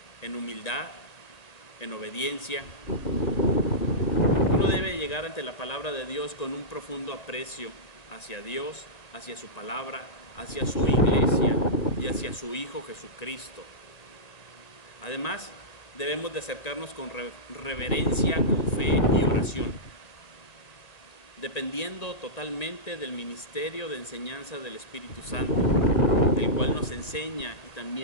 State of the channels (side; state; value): right; late; 1.9 ms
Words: en humildad, en obediencia. Uno debe llegar ante la palabra de Dios con un profundo aprecio hacia Dios, hacia su palabra, hacia su iglesia y hacia su Hijo Jesucristo. Además, debemos de acercarnos con reverencia, con fe y oración, dependiendo totalmente del ministerio de enseñanza del Espíritu Santo, el cual nos enseña y